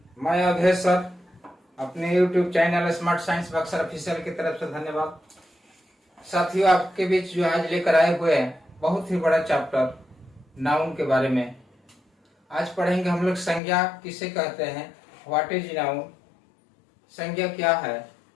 मैं अभय sir अपने YouTube channel smart science Buxar official की तरफ से धन्यवाद। साथियों, आपके बीच जो आज लेकर आए हुए हैं बहुत ही बड़ा चैप्टर नाउन के बारे में। आज पढ़ेंगे हम लोग संज्ञा किसे कहते हैं, व्हाट इज नाउन। संज्ञा क्या है?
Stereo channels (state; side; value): drops out; right; at 13.6 s